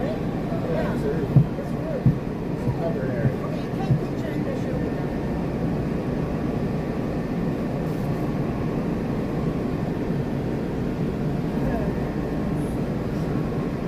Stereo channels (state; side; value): identical; both; correlation 1.00